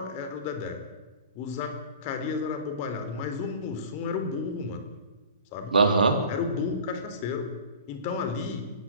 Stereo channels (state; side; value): inverted; both; correlation -0.40